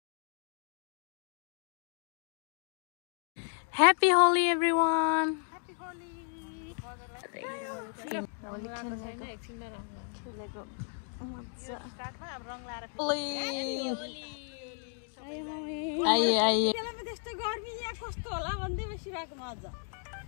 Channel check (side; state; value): right; silent; 55 dB below the other